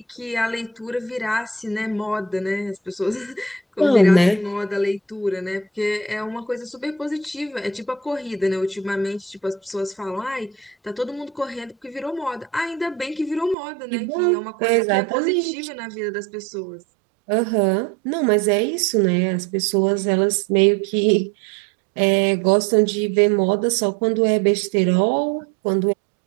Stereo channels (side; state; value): left; drops out; at 13.6 s